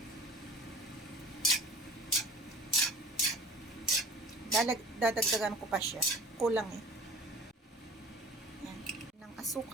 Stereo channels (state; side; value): normal; both; correlation 0.44